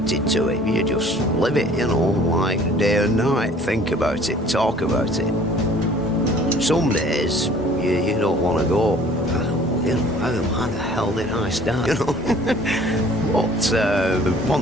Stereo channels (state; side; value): normal; both; correlation 0.52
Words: to it. You just live it, you know, like day and night. Think about it, talk about it. Some days you don't want to go. You know, how the hell did I start? You know, but